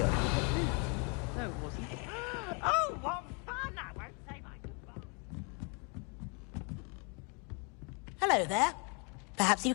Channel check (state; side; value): quieter; right; 34.9 dB